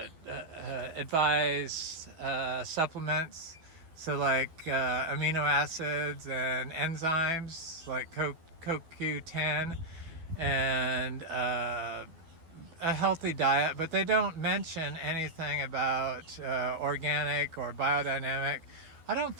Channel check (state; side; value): late; left; 12 ms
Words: advise supplements. So like amino acids and enzymes like CoQ10, and a healthy diet, but they don't mention anything about organic or biodynamic. I don't